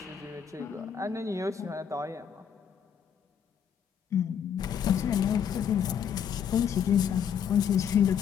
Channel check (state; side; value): quieter; right; 8.1 dB